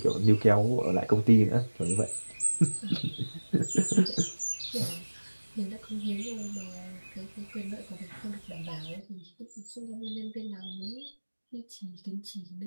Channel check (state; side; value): inverted; both; correlation -1.00